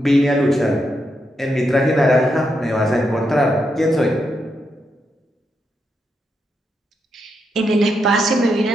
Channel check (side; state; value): both; normal; correlation 0.82